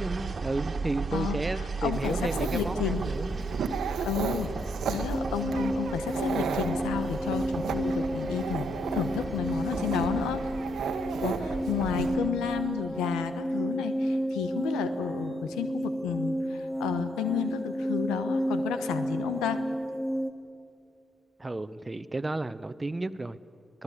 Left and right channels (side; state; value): both; normal; correlation 0.74